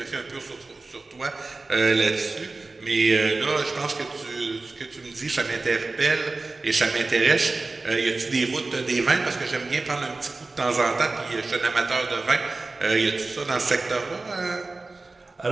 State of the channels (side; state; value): left; quieter; 3.5 dB